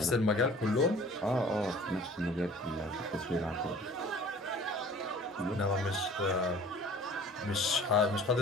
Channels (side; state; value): both; normal; correlation 0.48